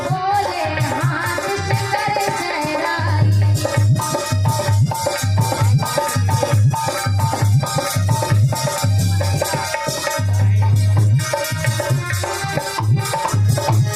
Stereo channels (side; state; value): right; noise; hum, 25 dB below the sound